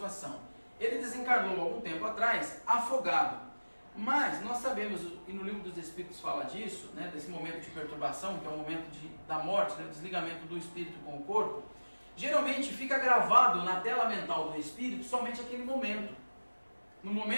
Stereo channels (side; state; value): both; inverted; correlation -1.00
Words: Ele desencarnou algum tempo atrás, afogado. Mas nós sabemos, e no livro dos Espíritos fala disso, né, desse momento de perturbação, que é o momento da morte, né, o desligamento do espírito com o corpo. Geralmente fica gravado na tela mental do espírito somente aquele momento. No